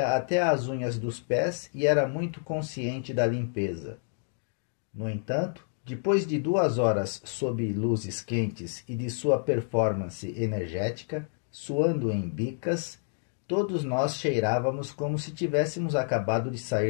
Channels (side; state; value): right; silent; digital silence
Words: até as unhas dos pés e era muito consciente da limpeza. No entanto, depois de 2 horas sob luzes quentes e de sua performance energética, suando em bicas, todos nós cheirávamos como se tivéssemos acabado de